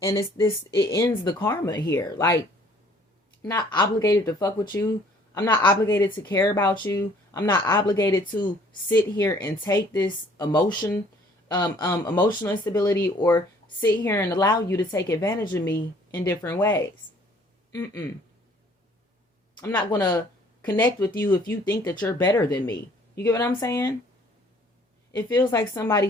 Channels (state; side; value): normal; both; correlation 0.58